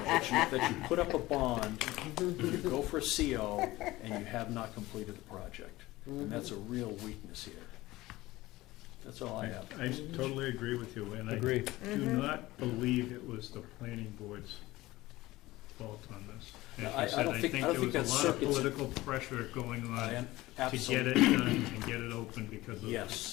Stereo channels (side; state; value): right; quieter; 18.4 dB